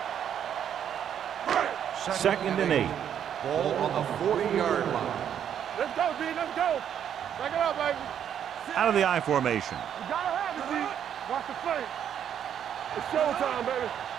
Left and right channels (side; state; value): left; quieter; 9.2 dB